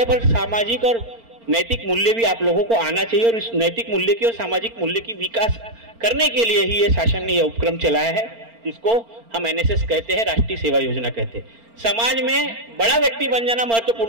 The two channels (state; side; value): late; left; 4.4 ms